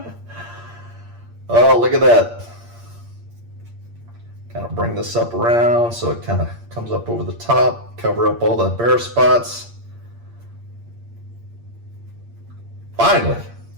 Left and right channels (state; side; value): late; left; 8.6 ms